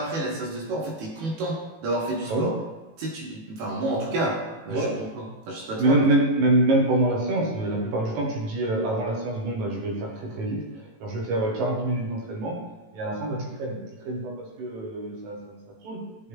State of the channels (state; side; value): late; left; 18 ms